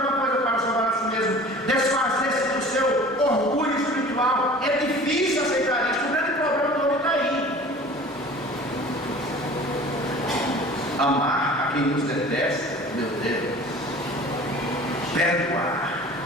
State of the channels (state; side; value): normal; both; correlation 0.43